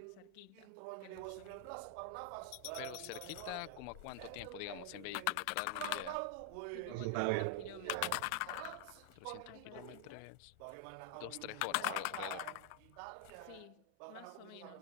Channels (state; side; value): different; both; correlation 0.00